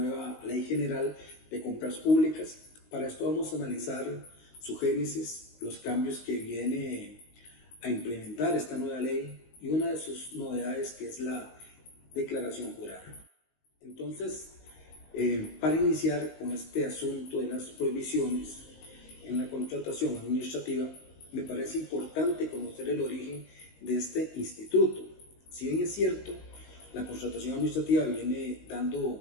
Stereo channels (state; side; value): late; right; 19 ms